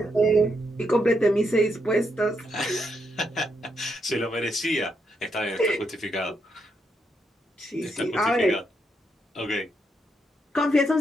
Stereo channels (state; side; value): normal; both; correlation 0.79